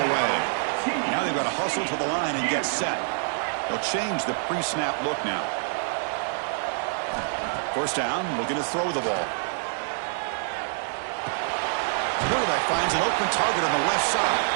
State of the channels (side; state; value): left; silent; digital silence